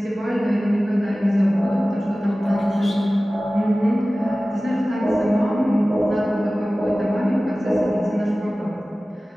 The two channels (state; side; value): normal; both; correlation 0.97